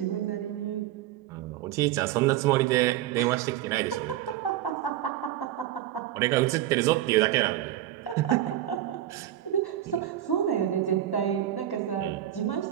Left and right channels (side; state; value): left; quieter; 12.6 dB